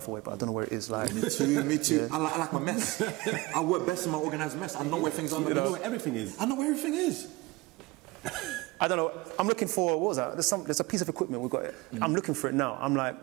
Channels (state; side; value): quieter; left; 22.0 dB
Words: away, but I don't know where it is. Like, me too. I like my mess. I work best in my organized mess. I know where things are. You know where everything is. I know where everything is. I don't know. I'm looking for, what was that? There's a piece of equipment we've got it. I'm looking for it now. I'm